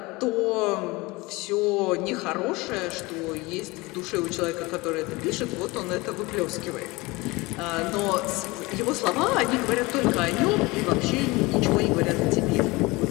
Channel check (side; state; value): right; quieter; 23.0 dB